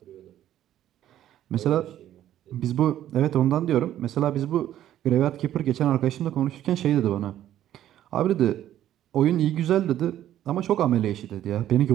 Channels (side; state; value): left; quieter; 12.0 dB